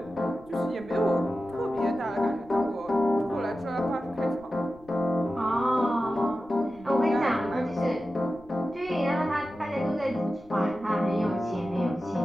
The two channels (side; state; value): left; noise; rumble, 26 dB below the sound